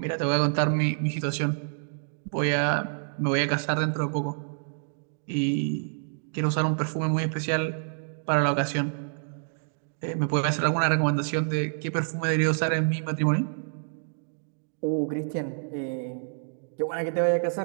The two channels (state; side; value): silent; left; digital silence